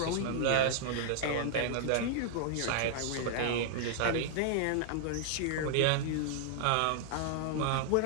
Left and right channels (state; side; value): different; both; correlation -0.01